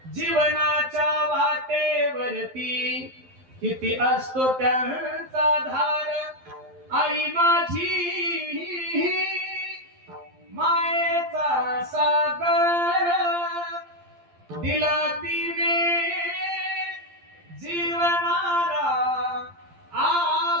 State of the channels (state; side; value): late; left; 12 ms